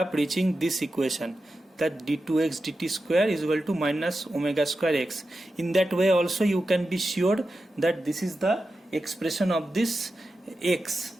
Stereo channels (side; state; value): both; normal; correlation 0.91